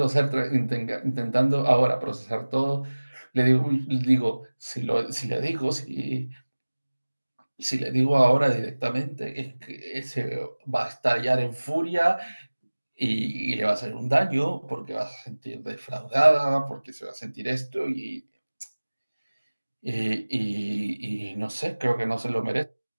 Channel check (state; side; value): inverted; both; correlation -1.00